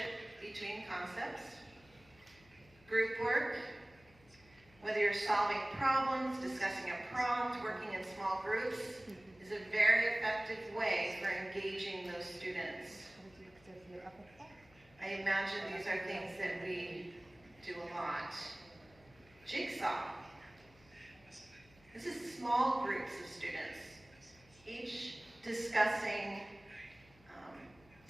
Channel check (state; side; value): noise; left; hum, 27 dB below the sound